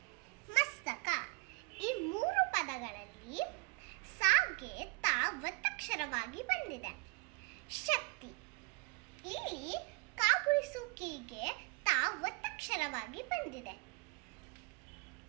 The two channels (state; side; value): quieter; left; 28.4 dB